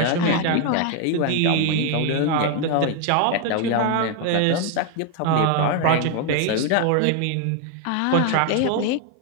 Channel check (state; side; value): different; both; correlation 0.01